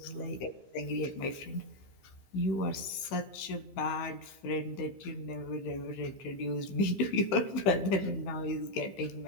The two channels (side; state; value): right; late; 15 ms